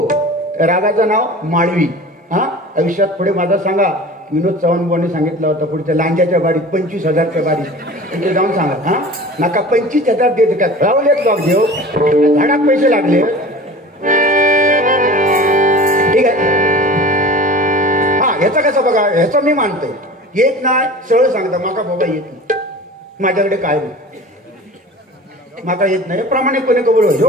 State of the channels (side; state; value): both; normal; correlation 0.38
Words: रागाचं नाव माळवी. हा आयुष्यात पुढे माझा सांगा विनोद चव्हाण बुवाने सांगितलं होतं पुढच्या लांजाच्या बारीत 25,000च्या बारीत तिथे जाऊन सांगा. हा नका 25,000 देत का रावलेत लॉक घेऊ झाडात पैसे लागले. ठीक आहे. हा ह्याचा कसं बघा ह्याचं मी मानतोय येत नाही सरळ सांगता माका बाबा येत नाही माझ्याकडे काय नाही माका येत नाही प्रामाणिकपणे कबूल